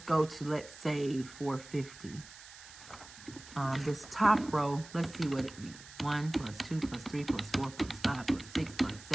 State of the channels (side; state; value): right; noise; hiss, 17 dB below the sound